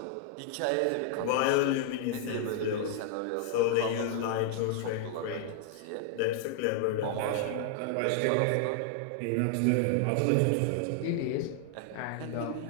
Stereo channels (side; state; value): both; different; correlation 0.00